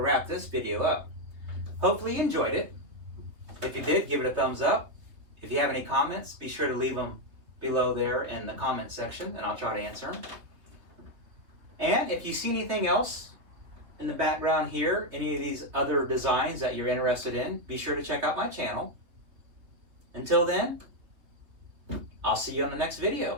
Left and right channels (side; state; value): left; late; 3.5 ms